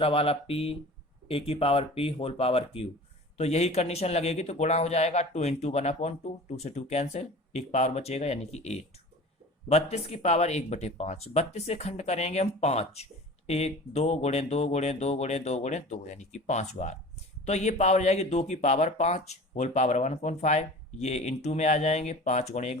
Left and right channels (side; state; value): both; normal; correlation 0.40